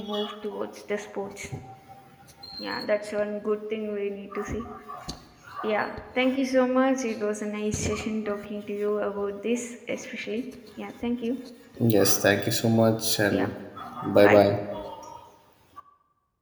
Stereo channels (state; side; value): identical; both; correlation 1.00